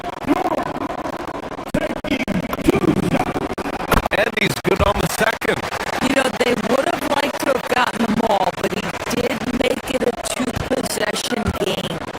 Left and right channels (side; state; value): both; identical; correlation 1.00